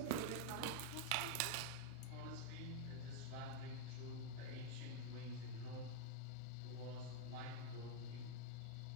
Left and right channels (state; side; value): different; both; correlation 0.00